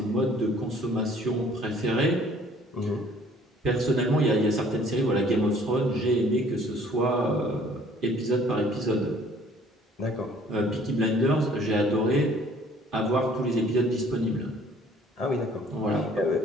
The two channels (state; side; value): normal; both; correlation 0.56